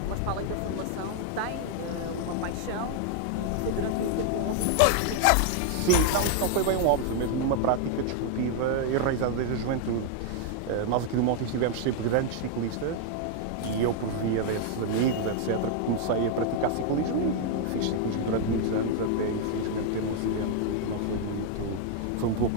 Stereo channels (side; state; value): both; different; correlation 0.00